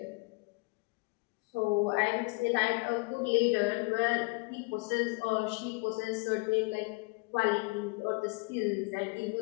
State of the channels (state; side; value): quieter; right; 27.2 dB